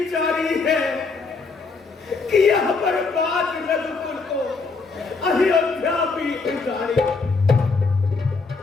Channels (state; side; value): quieter; right; 4.3 dB